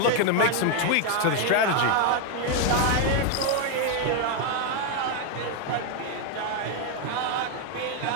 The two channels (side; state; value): both; different; correlation 0.01